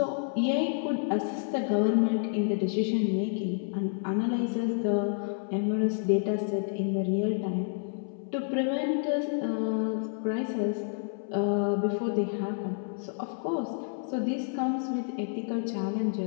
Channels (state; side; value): silent; right; 58 dB below the other